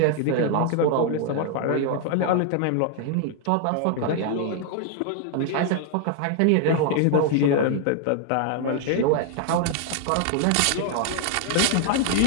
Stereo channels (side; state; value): both; different; correlation 0.00